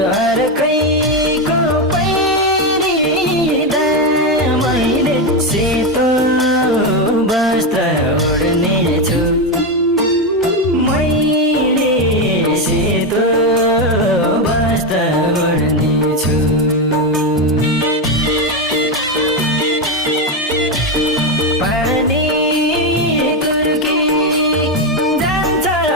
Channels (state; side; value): normal; both; correlation 0.10